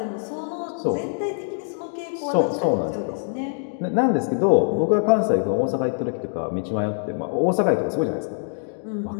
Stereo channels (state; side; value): silent; right; digital silence